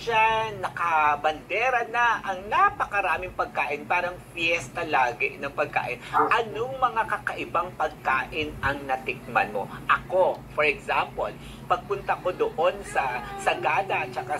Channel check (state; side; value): identical; both; correlation 1.00